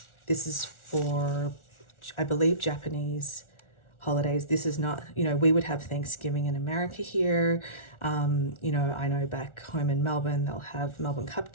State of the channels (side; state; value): right; late; 1.4 ms